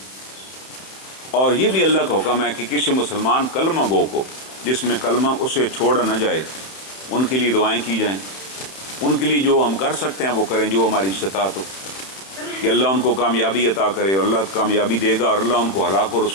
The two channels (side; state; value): right; late; 31 ms